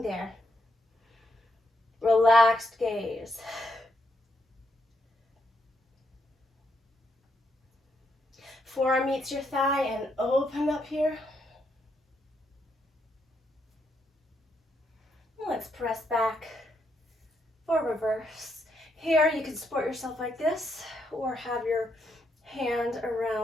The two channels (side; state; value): both; normal; correlation 0.78